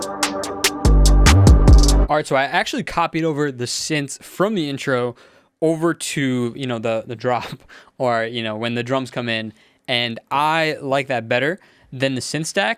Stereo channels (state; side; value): identical; both; correlation 1.00